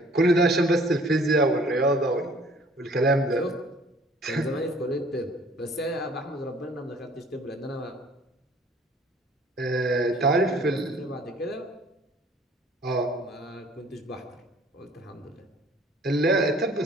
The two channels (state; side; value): normal; both; correlation 0.55